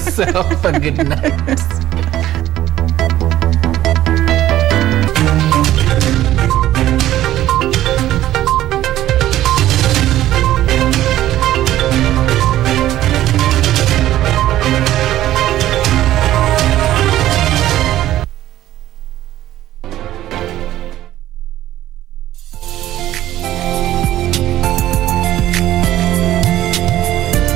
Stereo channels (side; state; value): left; quieter; 13.7 dB